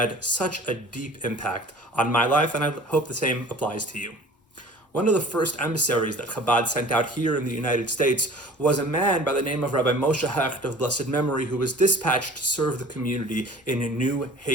such a deep impact on my life, and I hope the same applies to you. One of the first emissaries that Chabad sent out here in the United States was a man by the name of Rabbi Moshe Hecht of blessed memory, who was dispatched to serve the community in New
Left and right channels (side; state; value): both; normal; correlation 0.45